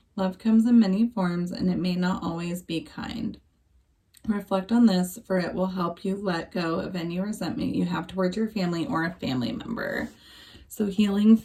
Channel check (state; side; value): identical; both; correlation 1.00